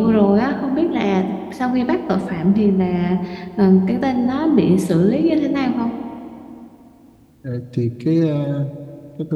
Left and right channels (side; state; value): both; identical; correlation 1.00